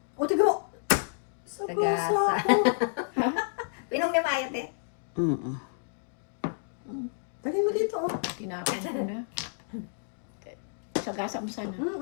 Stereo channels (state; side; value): silent; right; digital silence